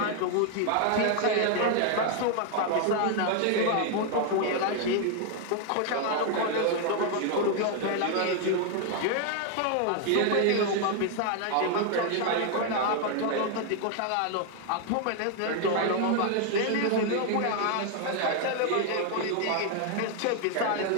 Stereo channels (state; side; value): different; both; correlation 0.00